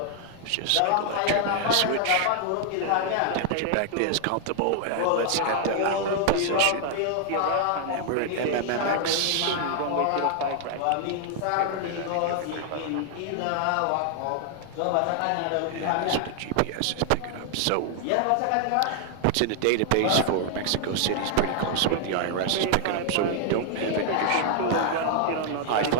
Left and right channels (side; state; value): both; different; correlation 0.00